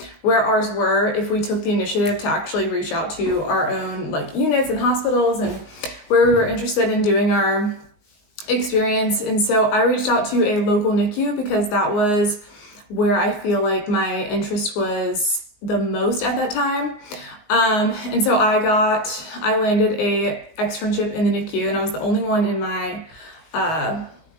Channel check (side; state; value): right; late; 19 ms